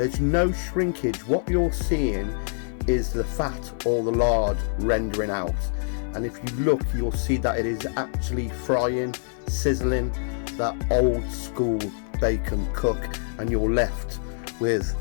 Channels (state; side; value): silent; right; 61 dB below the other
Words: no shrinkage. What you're seeing is the fat or the lard rendering out, and if you look you'll see that it is actually frying, sizzling that old school bacon cook, and you're left with